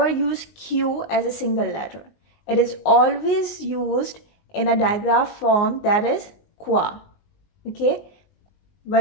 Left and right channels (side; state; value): right; late; 19 ms